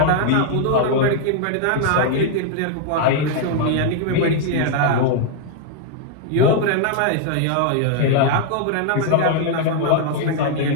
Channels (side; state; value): both; different; correlation 0.00